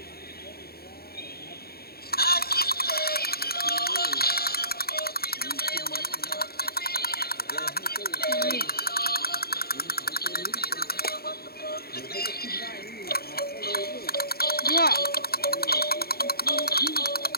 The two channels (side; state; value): right; late; 0.45 ms